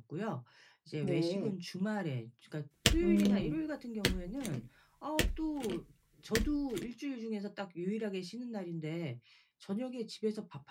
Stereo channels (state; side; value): identical; both; correlation 1.00